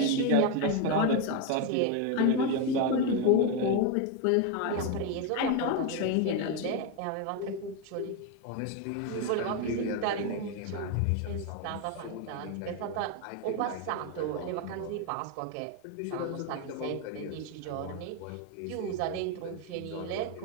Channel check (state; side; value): different; both; correlation 0.02